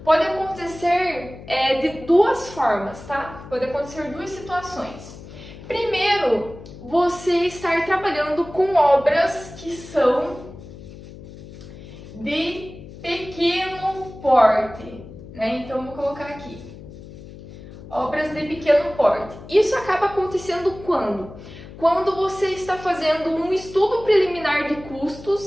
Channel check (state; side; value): noise; left; hum, 16 dB below the sound